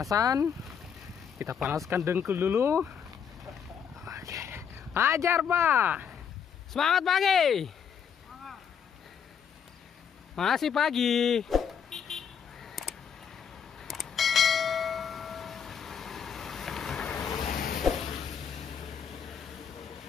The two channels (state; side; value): quieter; right; 7.4 dB